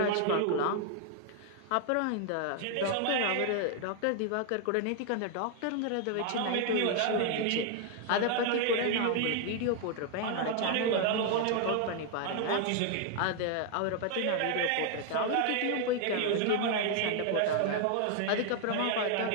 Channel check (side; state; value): both; different; correlation 0.00